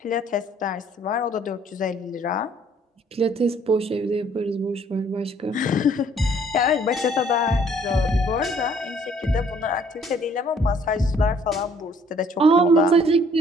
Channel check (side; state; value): both; normal; correlation 0.60